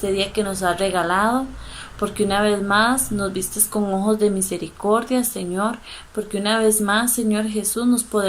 día que nos has regalado, porque una vez más nos vistes con ojos de misericordia, Señor, porque una vez más, Señor Jesús, nos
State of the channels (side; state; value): both; identical; correlation 1.00